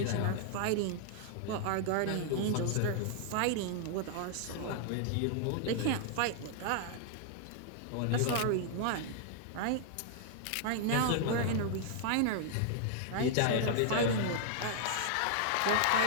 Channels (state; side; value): different; both; correlation -0.01